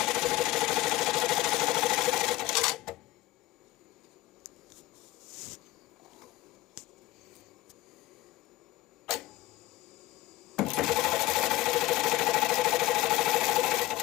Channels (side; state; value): right; quieter; 17.3 dB